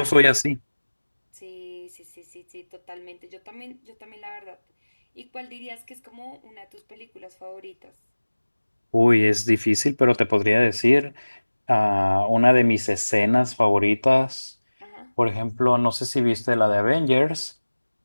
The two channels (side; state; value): both; inverted; correlation -1.00